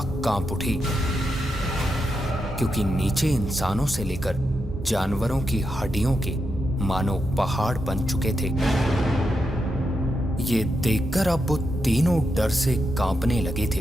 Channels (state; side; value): normal; both; correlation 0.85